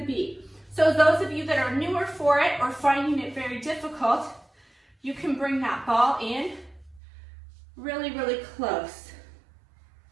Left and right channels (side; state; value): left; drops out; at 7.0 s